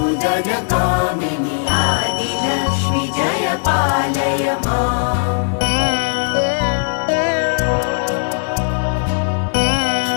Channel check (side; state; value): right; silent; 63 dB below the other